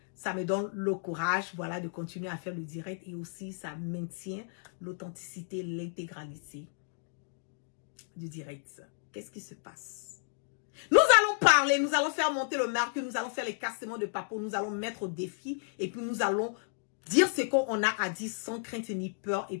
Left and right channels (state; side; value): silent; right; digital silence